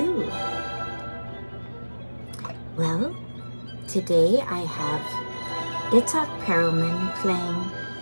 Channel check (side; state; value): both; inverted; correlation -1.00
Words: Well, today I have Perlman playing